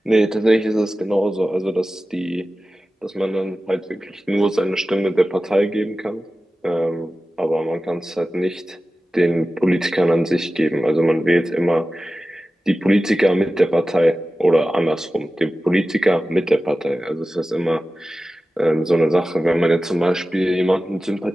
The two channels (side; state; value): both; normal; correlation 0.95